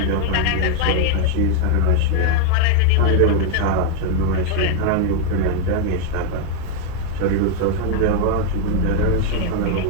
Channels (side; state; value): both; different; correlation 0.00